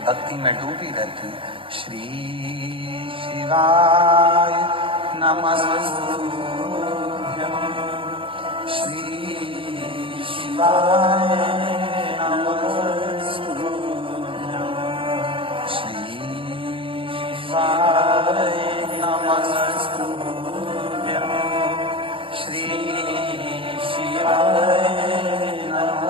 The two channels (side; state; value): left; late; 0.25 ms